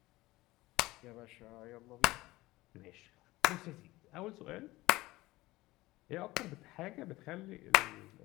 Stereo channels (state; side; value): quieter; right; 19.0 dB